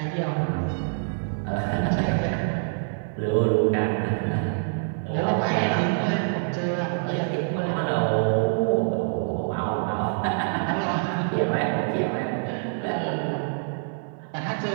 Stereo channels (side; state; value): left; silent; 58 dB below the other